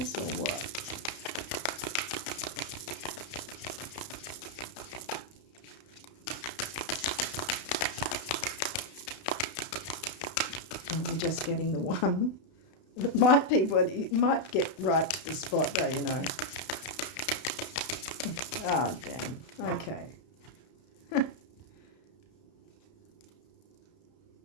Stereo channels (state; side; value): late; right; 32 ms